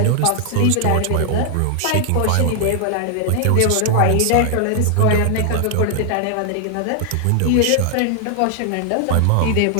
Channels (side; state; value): both; different; correlation 0.00